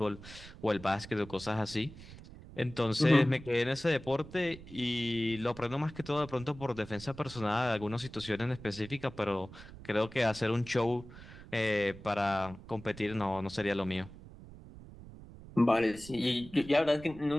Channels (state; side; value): noise; right; rumble, 16 dB below the sound